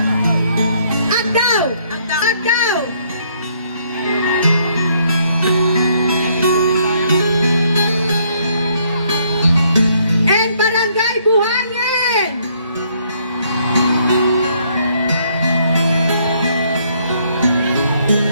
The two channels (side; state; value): both; inverted; correlation -0.68